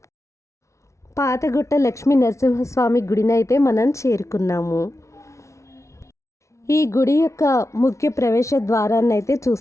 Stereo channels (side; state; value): right; late; 0.14 ms